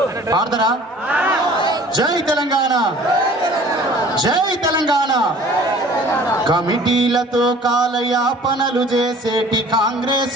పాడతారా? జై తెలంగాణ, జై తెలంగాణ. కమిటీలతో కాలయాపనలు చేసేటి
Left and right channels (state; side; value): normal; both; correlation 0.49